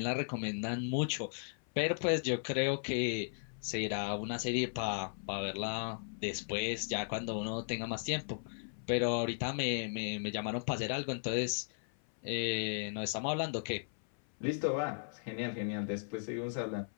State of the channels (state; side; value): silent; right; 54 dB below the other